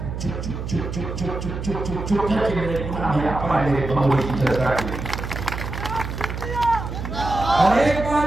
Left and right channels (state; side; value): noise; right; hum, 6 dB below the sound